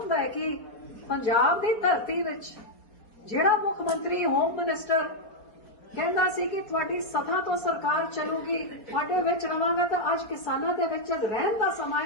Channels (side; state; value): right; late; 4.3 ms